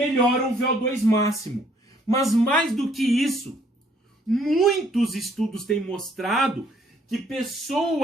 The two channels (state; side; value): normal; both; correlation 0.64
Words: o VO2 máximo. Mas mais do que isso, muitos estudos têm mostrado que